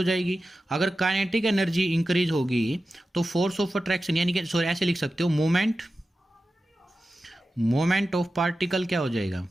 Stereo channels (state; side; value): normal; both; correlation 0.93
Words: जाएगी। अगर काइनेटिक एनर्जी इंक्रीज होगी तो फोर्स ऑफ अट्रैक्शन, यानी कि सॉरी ऐसे लिख सकते हो, मोमेंट ऑफ पार्टिकल क्या हो जाएगा,